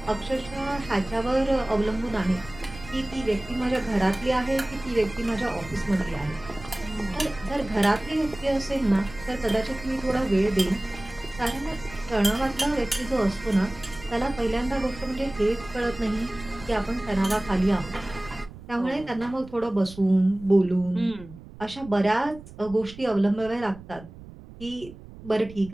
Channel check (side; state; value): right; noise; rumble, 17 dB below the sound